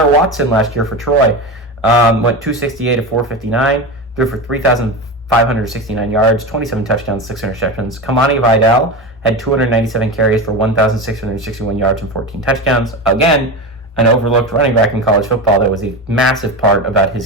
Watson last year for Troy went 268-459, threw for 3,569 yards, 27 touchdowns, 6 interceptions. Kamani Vidal had 297 carries for 1,661 yards and 14 touchdowns. Again, an overlooked running back in college football that was a massive part about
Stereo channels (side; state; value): both; normal; correlation 0.22